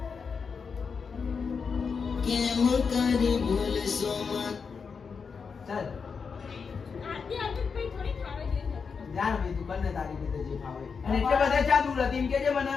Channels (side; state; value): right; quieter; 5.6 dB